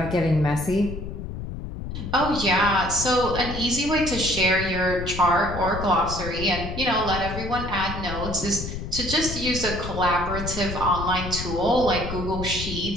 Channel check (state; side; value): noise; left; rumble, 7 dB below the sound